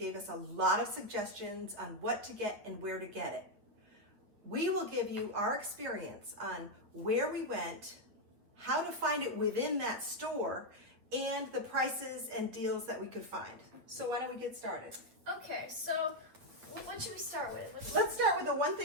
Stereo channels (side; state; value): left; late; 8.4 ms